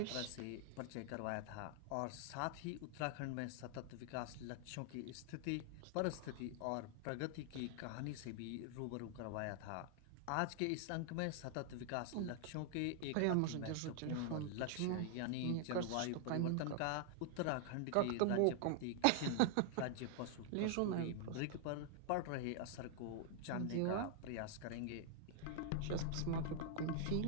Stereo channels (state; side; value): different; both; correlation 0.00